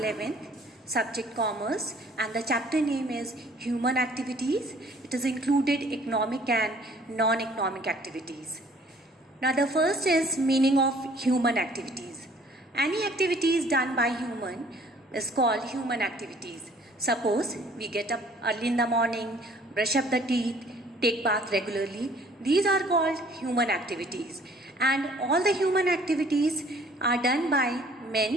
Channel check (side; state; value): both; normal; correlation 0.56